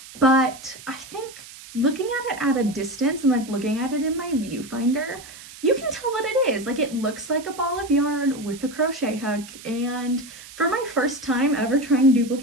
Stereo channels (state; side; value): noise; right; hiss, 17 dB below the sound